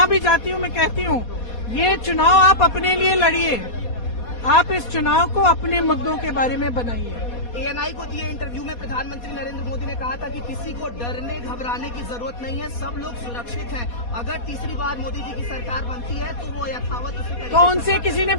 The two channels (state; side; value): late; right; 4.2 ms